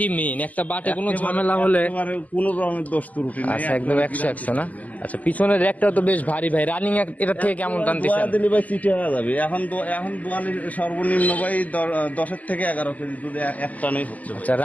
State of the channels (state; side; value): late; right; 0.074 ms